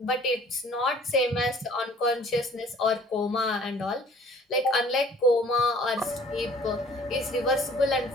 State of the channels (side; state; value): both; normal; correlation 0.53